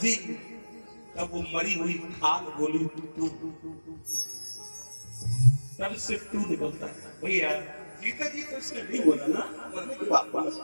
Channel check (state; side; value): inverted; both; correlation -1.00